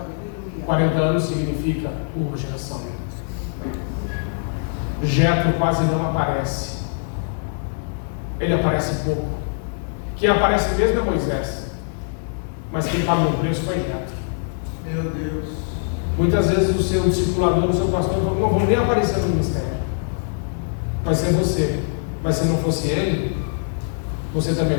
40 anos significa uma geração. Jetro quase não aparece. Ele aparece pouco. Quem aparece mesmo é Moisés. Mas quem pagou o preço foi Jetro. Meu Deus. Muitas vezes o seu discipulador, o seu pastor, não vão nem aparecer no ministério. Vai ser você. Mas se não fosse ele, você também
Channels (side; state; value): right; silent; digital silence